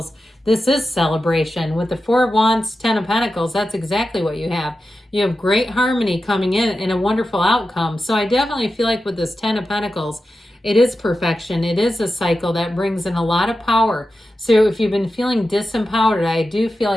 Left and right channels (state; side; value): normal; both; correlation 0.92